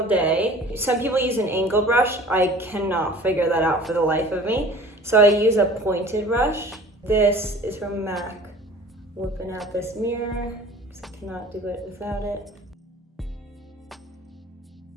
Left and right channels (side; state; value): both; normal; correlation 0.45